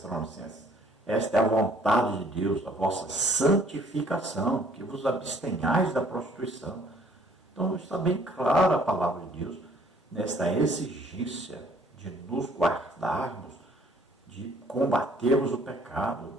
Esta é a vontade de Deus, a vossa santificação, que vos abstenhais da prostituição. Então está bem clara a palavra de Deus nesta exigência de nos guardarmos, de combatermos o pecado,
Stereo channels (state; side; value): normal; both; correlation 0.60